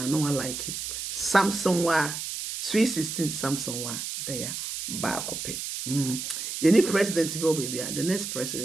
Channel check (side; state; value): right; noise; hiss, 5 dB below the sound